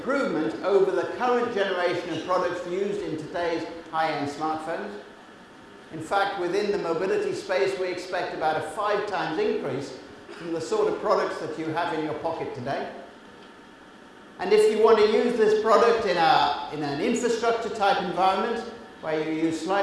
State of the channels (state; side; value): identical; both; correlation 1.00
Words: over the current generation of products used in today's high-end smartphones. In fact, within the mobility space, we expect about a 5 times increase from the sort of products that you have in your pocket today. And if you want to use this product in an infrastructure type environment where you use